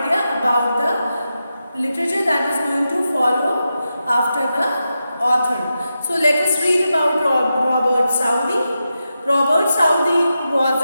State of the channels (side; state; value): both; inverted; correlation -0.89